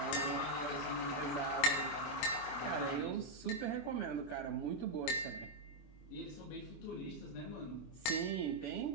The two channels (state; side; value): late; right; 24 ms